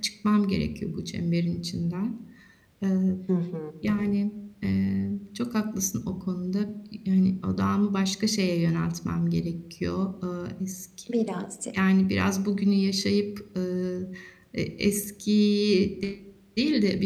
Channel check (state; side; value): identical; both; correlation 1.00